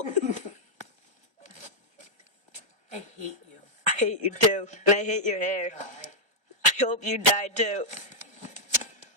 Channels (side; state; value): left; late; 1.3 ms